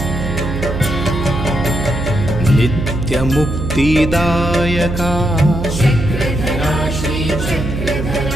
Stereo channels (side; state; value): right; noise; hum, 4 dB below the sound